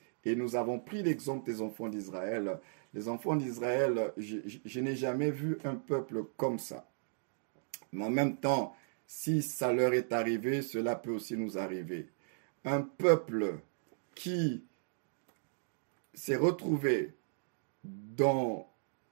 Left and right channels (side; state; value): left; silent; digital silence